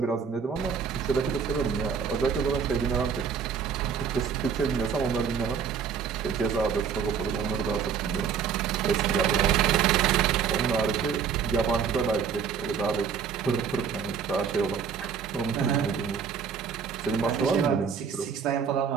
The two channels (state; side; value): quieter; left; 6.8 dB